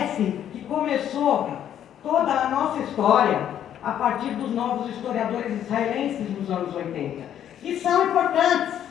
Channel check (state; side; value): quieter; right; 10.2 dB